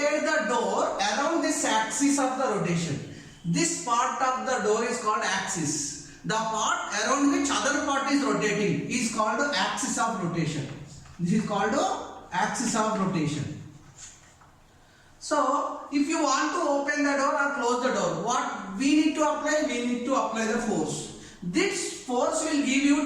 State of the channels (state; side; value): identical; both; correlation 1.00